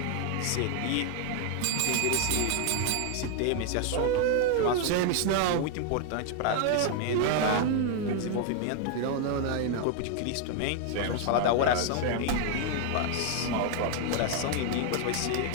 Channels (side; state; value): both; different; correlation 0.00